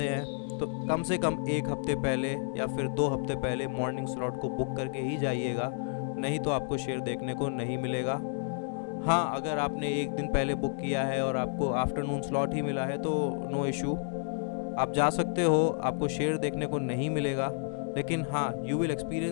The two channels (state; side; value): silent; right; 57 dB below the other